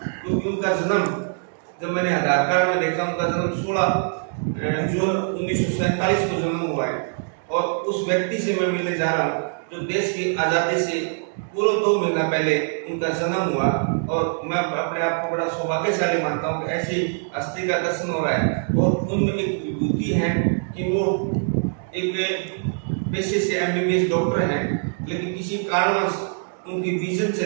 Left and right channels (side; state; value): left; silent; 63 dB below the other